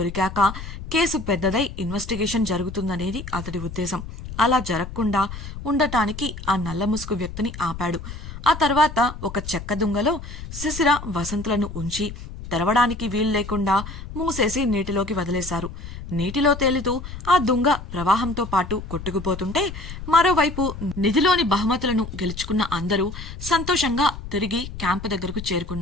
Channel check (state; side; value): noise; left; rumble, 10 dB below the sound